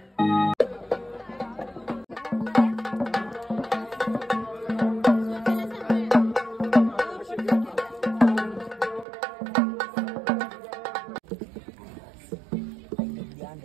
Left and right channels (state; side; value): drops out; left; at 9.1 s